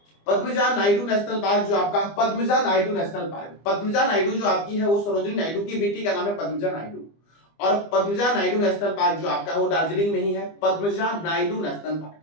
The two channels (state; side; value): late; right; 25 ms